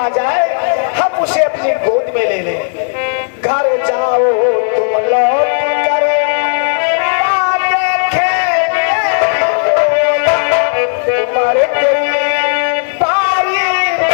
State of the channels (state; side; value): silent; right; 70 dB below the other